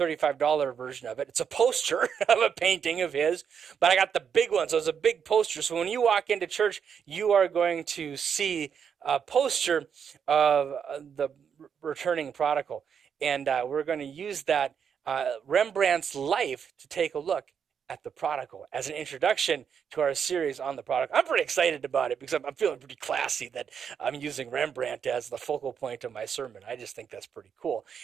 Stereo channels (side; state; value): left; quieter; 7.3 dB